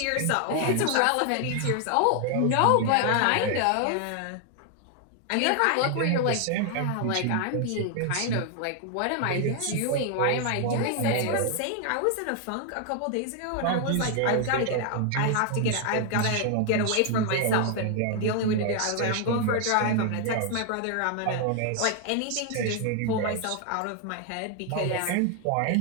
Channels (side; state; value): both; different; correlation 0.00